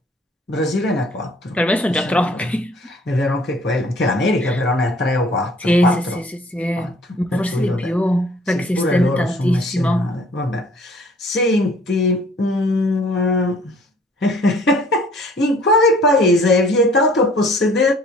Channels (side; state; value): both; normal; correlation 0.55